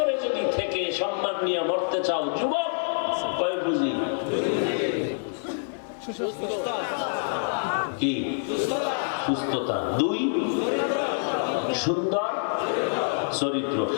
যদি থেকে সম্মান নিয়ে মরতে চাও, যুবক, কয় বুঝি? কি? সুস্থতা। 2, সুন্দর চরিত্র।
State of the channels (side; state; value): right; silent; 61 dB below the other